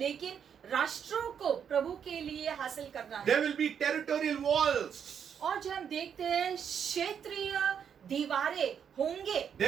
राष्ट्रों को प्रभु के लिए हासिल करना है। There will be territorial walls. और जब हम देखते हैं क्षेत्रीय दीवारें होंगे,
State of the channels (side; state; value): left; quieter; 7.8 dB